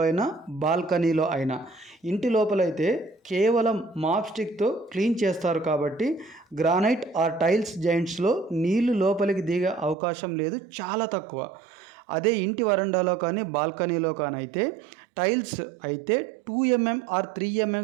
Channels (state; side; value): drops out; left; at 10.0 s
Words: అయినా, బాల్కనీలో అయినా. ఇంటి లోపలైతే కేవలం మాప్ స్టిక్తో క్లీన్ చేస్తారు కాబట్టి గ్రానైట్ ఆర్ టైల్స్ జాయింట్స్లో నీళ్లు లోపలికి దిగే అవకాశం లేదు, చాలా తక్కువ. అదే ఇంటి వరండాలో కానీ బాల్కనీలో కానీ అయితే టైల్స్ అయితే 2 mm ఆర్ 3